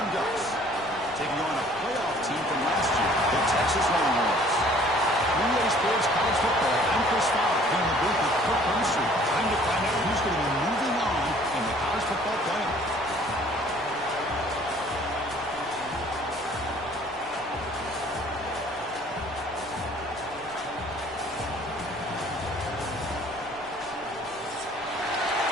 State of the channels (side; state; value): right; noise; rumble, 26 dB below the sound